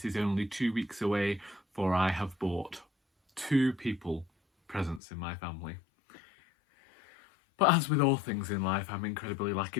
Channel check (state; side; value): drops out; right; at 5.0 s